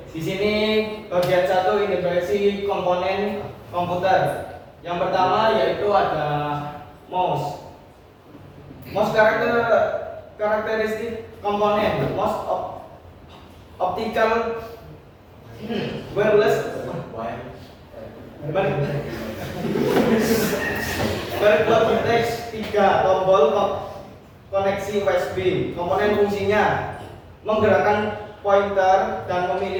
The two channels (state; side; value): identical; both; correlation 1.00